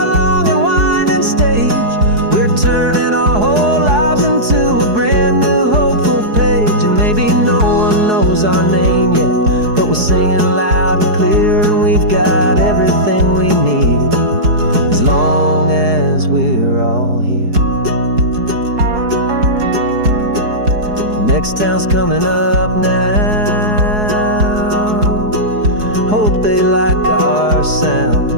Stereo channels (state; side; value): late; left; 4.7 ms